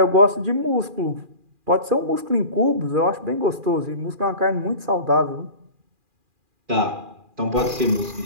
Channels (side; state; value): left; late; 2.4 ms